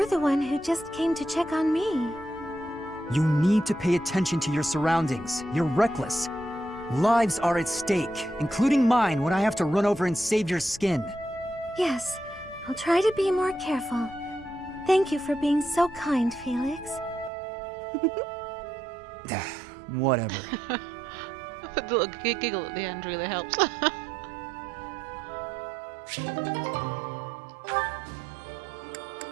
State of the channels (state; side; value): drops out; left; at 17.3 s